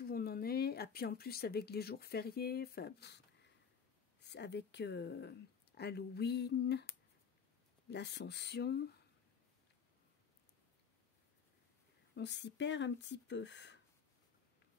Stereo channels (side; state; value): right; quieter; 6.7 dB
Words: où on en est. Et puis en plus avec les jours fériés, avec Halloween, l'Ascension, on s'y perd un petit peu.